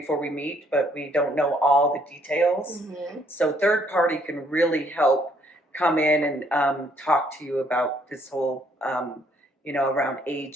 we meet, but we don't know all the details. So third party can really help come in and talk to you about this whole, around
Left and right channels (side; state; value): both; normal; correlation 0.66